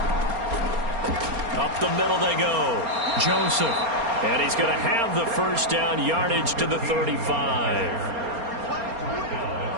Up the middle they go. Joseph. And he's going to have the first down yardage to the 35.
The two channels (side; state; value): left; late; 4.3 ms